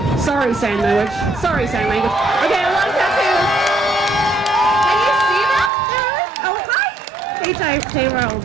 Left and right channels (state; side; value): drops out; left; at 5.7 s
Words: Sorry, sign language. Sorry, sign language. Okay, a lot of tattoos. Payroll